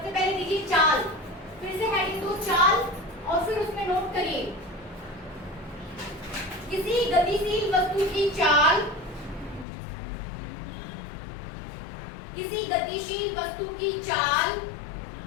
पहले दीजिए चाल, फिर से हेडिंग दो चाल, और फिर उसमें नोट करिए किसी गतिशील वस्तु की चाल, किसी गतिशील वस्तु की चाल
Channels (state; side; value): drops out; right; at 9.7 s